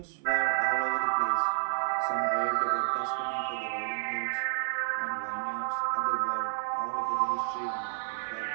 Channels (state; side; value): silent; left; 58 dB below the other